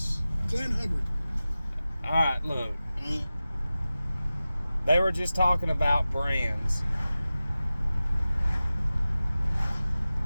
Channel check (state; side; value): inverted; both; correlation -0.96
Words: Glenn Hubbard. All right, look. They were just talking about brands.